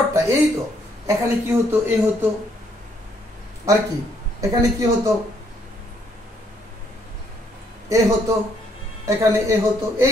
এই তো এখানে কি হতো? এ হতো। আর কি এখানে কি হতো? এ হতো, এখানে এ হতো।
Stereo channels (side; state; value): both; normal; correlation 0.70